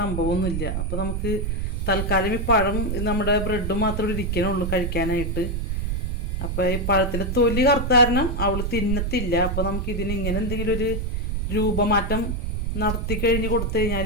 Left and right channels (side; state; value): right; noise; rumble, 1 dB below the sound